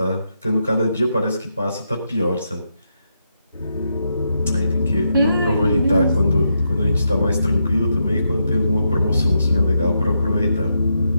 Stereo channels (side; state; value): both; inverted; correlation -0.82